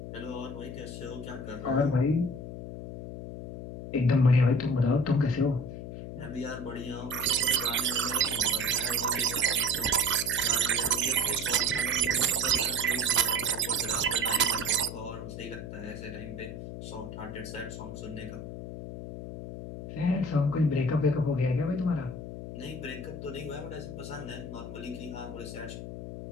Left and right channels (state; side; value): noise; left; hum, 9 dB below the sound